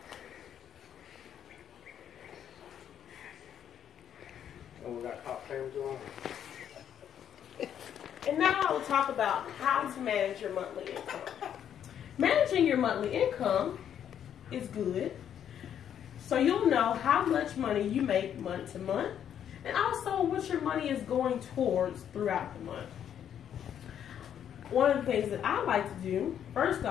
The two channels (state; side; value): quieter; right; 9.4 dB